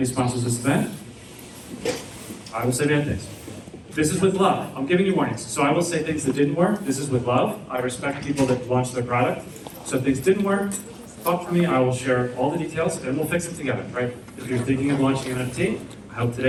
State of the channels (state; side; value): identical; both; correlation 1.00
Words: sponsors of this event. I will say bad things. This is with love. I'm giving you warnings. So I will say things that didn't work. This is with love. I respect people that launch their product. So if things didn't work, talk to me. I will share all the details and we'll fix it together, right? If you're thinking of launching an NFT, I hope